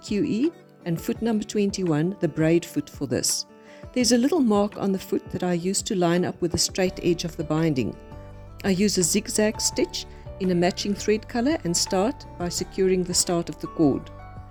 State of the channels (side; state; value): both; identical; correlation 1.00